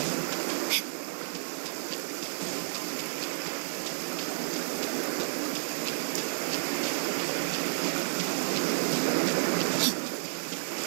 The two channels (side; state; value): left; silent; digital silence